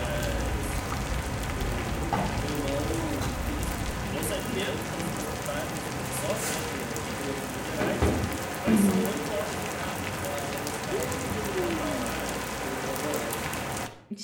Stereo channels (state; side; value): identical; both; correlation 1.00